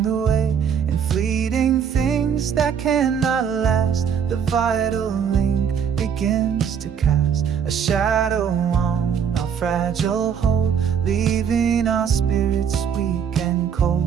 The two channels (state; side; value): quieter; left; 7.6 dB